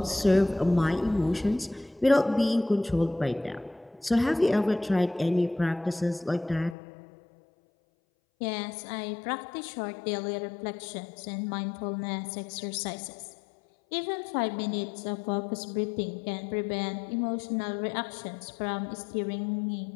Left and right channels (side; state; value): right; drops out; at 6.8 s